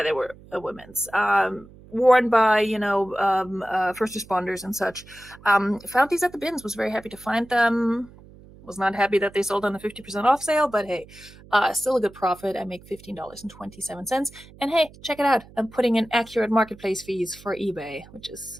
they were women's. Worn by, first responders and such. Found these at the bins, was very happy to find them. Was not happy that they sold on a 50% off sale, but hey, still a good profit. I make $15.27. And hey, check it out. I'm putting in accurate marketplace fees for eBay, which is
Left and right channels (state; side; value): noise; right; hum, 22 dB below the sound